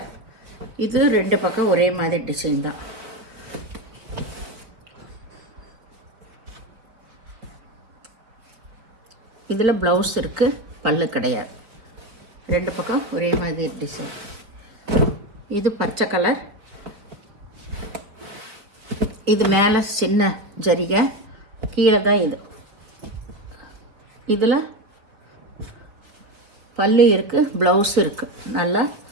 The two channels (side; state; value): left; late; 4.7 ms